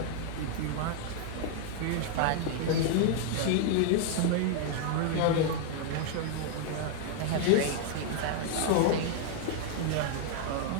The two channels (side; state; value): both; different; correlation -0.01